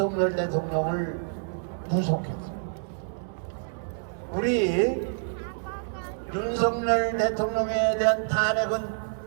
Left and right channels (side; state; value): left; silent; digital silence